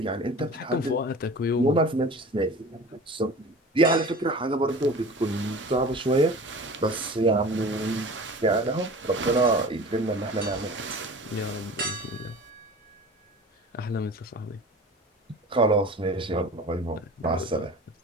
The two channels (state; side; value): normal; both; correlation 0.39